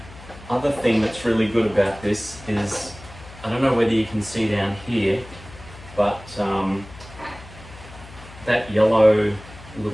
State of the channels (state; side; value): noise; left; hum, 18 dB below the sound